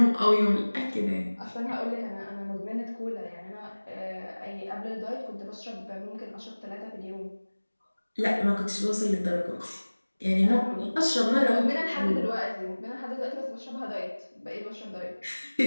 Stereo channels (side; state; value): both; inverted; correlation -1.00